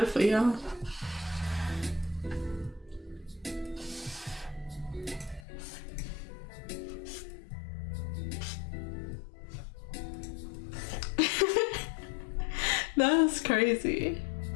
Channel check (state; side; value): drops out; right; at 5.4 s